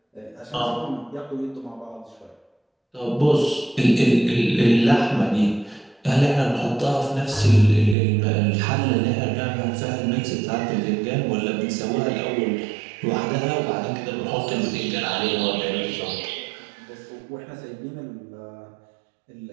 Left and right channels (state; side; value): drops out; left; at 8.0 s